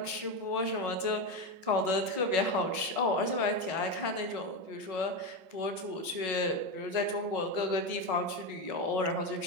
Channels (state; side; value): late; left; 5.4 ms